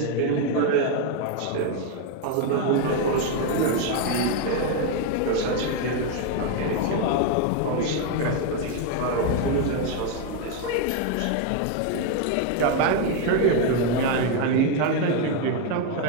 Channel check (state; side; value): different; both; correlation 0.01